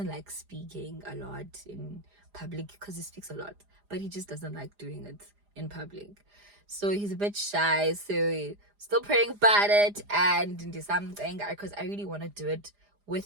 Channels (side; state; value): left; late; 4.9 ms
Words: like speaking a lot in public because he speaks a lot, but he just doesn't like doing it in public. So he's a bit shy. So still praying about it and do something because I really want to do it with